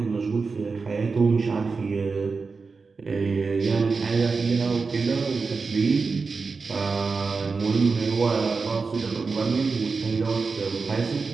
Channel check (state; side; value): quieter; left; 4.5 dB